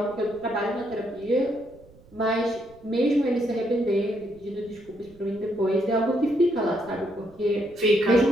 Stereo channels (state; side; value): noise; right; rumble, 25 dB below the sound